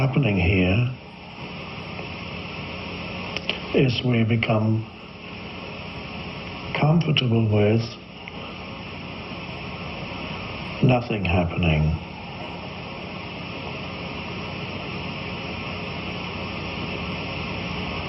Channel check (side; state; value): both; identical; correlation 1.00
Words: here is we become comfortable with nothing happening.